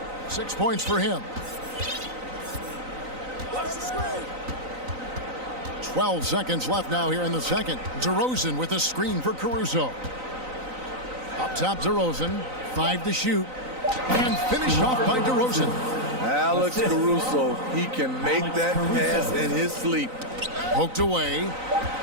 6 points for him. 12 seconds left now here in the second. DeRozan with a screen for Caruso. Up top, DeRozan. 5 to shoot. And finished off by DeRozan. Alex Caruso, he can make that pass in his sleep. Poked away.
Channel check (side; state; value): left; late; 3.9 ms